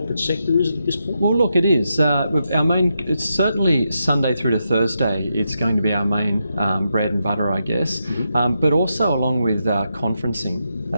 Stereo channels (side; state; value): both; inverted; correlation -0.84